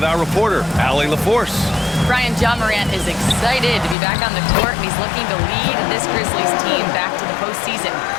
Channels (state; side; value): drops out; right; at 4.0 s